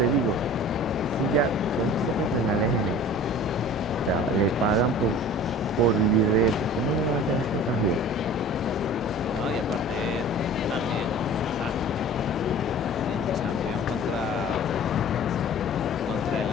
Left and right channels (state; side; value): normal; both; correlation 0.43